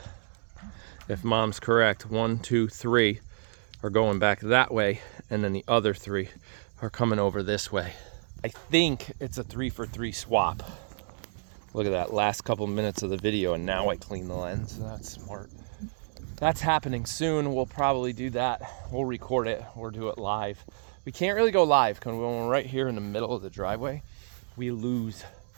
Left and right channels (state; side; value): silent; left; digital silence